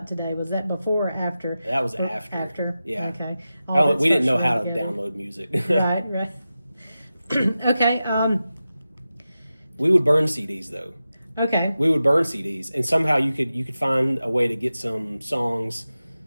today. Was that before or after? That was after. After. Yeah. Okay. We didn't know how to download music. Right. Okay. We would burn CDs though. Okay. We would burn CDs, and somehow you could find a way to get some songs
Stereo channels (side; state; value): both; inverted; correlation -0.93